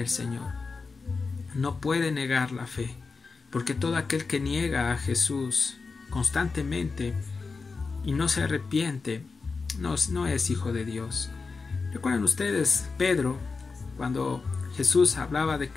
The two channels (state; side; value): quieter; right; 4.4 dB